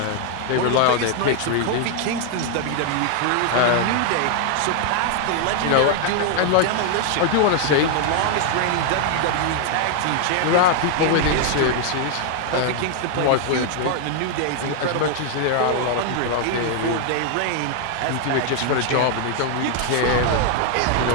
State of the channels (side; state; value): both; different; correlation 0.00